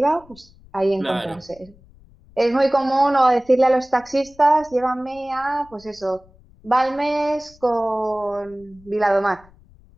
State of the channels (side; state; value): left; noise; rumble, 27 dB below the sound